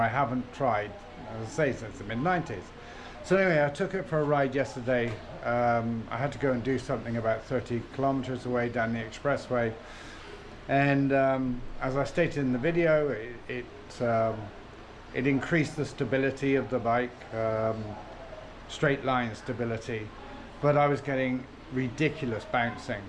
haven't tried, as I say, since the mid-90s. So anyway, I took it for a ride yesterday. I had to go and do something about 30 kilometers away down the expressway, and as I stated in the video, it increased the stability of the bike, straight line stability, but I was getting ridiculous bouncing.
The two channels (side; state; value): both; identical; correlation 1.00